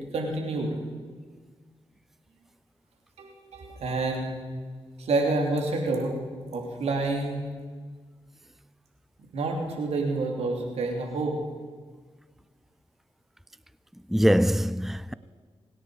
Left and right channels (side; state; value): both; normal; correlation 0.77